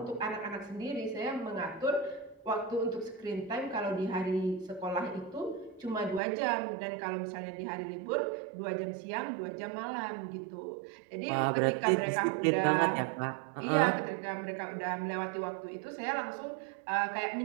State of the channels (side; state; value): left; drops out; at 6.2 s